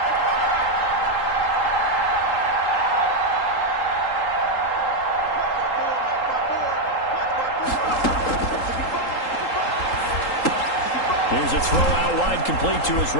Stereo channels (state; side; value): late; right; 3.8 ms